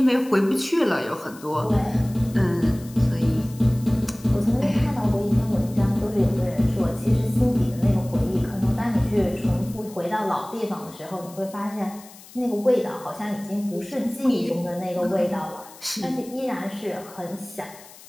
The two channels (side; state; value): left; noise; hiss, 20 dB below the sound